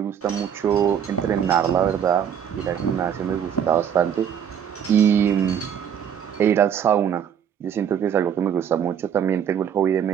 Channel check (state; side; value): quieter; left; 8.5 dB